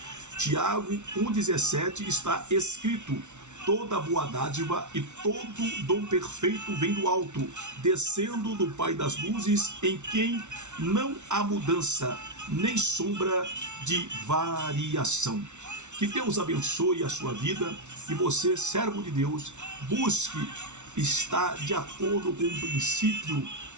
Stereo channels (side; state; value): left; late; 0.83 ms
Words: Tiago 1,17 está escrito: toda boa dádiva e todo dom perfeito vem do alto, descendo do Pai das luzes, em quem não há mudança, nem sombra de variação. Que Deus abençoe a sua vida e você, servo de Deus, busque estar de acordo com o princípio